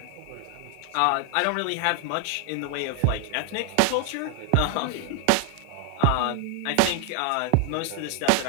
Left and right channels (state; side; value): different; both; correlation 0.00